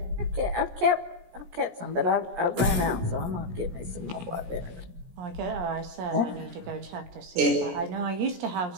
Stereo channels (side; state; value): left; late; 17 ms